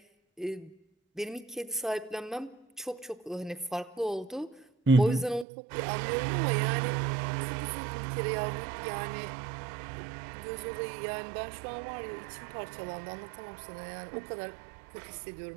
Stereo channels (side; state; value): left; drops out; at 5.5 s